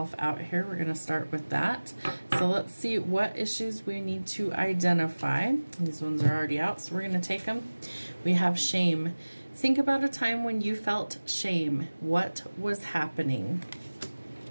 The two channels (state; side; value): inverted; both; correlation -1.00